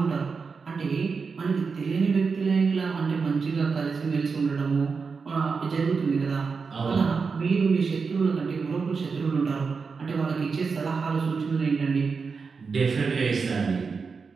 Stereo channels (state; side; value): quieter; left; 5.1 dB